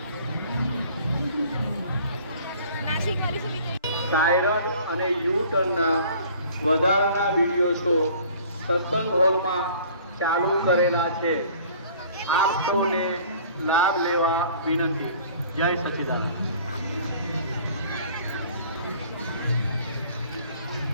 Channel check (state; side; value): inverted; both; correlation -0.51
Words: સાયરન અને યુ ટર્નના વધારાના વિડીયો શો સત્સંગ હોલમાં ચાલુ કરેલા છે. આપ સૌને લાભ લેવા વિનંતી. જય સચ્ચિદાનંદ.